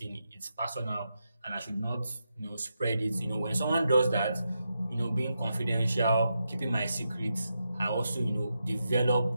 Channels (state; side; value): inverted; both; correlation -0.86